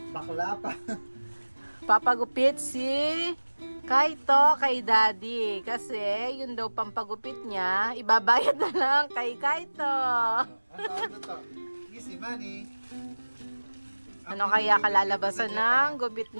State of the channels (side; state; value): both; inverted; correlation -1.00